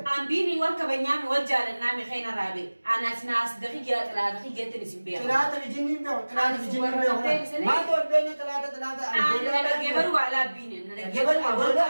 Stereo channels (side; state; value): both; inverted; correlation -1.00